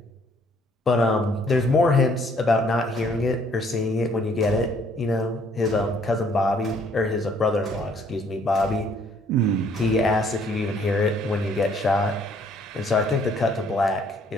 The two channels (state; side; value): normal; both; correlation 0.63